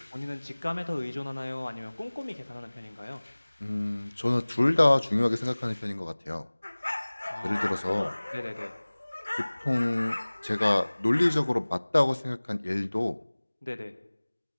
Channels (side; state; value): both; inverted; correlation -1.00